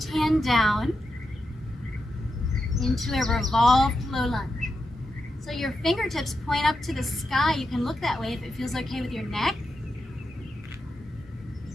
hand down into a revolved low lunge. So your fingertips point up to the sky. You can look that way if it feels okay with your neck.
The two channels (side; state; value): both; normal; correlation 0.87